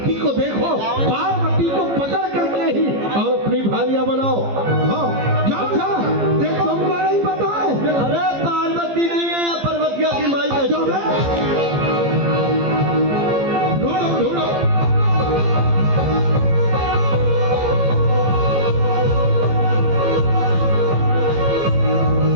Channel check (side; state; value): left; late; 15 ms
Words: को देखो, पार्वती को पकड़ करके ही और अपनी भारियां बनाओ। हाँ जाओ जा, देखो तुमको नहीं पता है? अरे पार्वती नहीं है, पर्वतिया की माई का जो है ढूंढो ढूंढो।